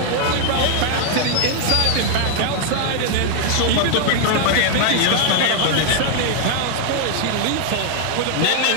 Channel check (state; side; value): different; both; correlation 0.00